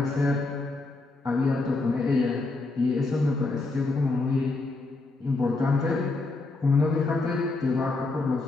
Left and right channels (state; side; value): quieter; right; 3.3 dB